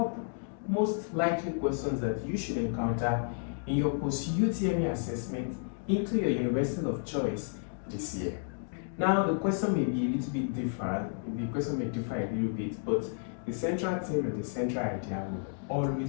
most likely questions that you should encounter in your Post UTME assessment into your university of choice this year. Now, the question may be a little bit different, the question may differ a little bit, but the central theme and the central idea will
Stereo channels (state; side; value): silent; right; digital silence